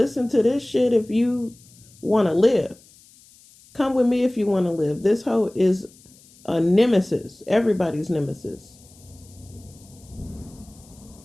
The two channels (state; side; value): noise; left; hiss, 26 dB below the sound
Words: to this shit if you want to live. Come with me if you want to live. This hoe is a nemesis. Everybody's nemesis.